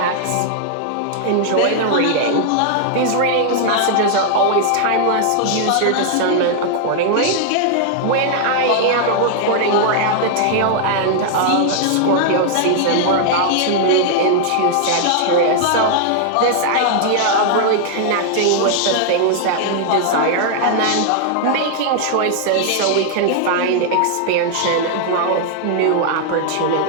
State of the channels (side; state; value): both; different; correlation 0.00